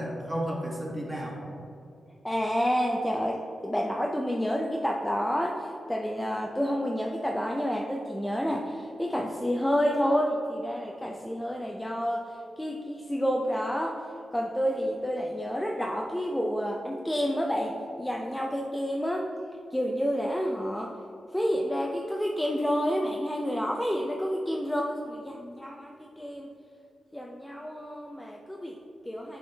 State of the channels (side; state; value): both; normal; correlation 0.94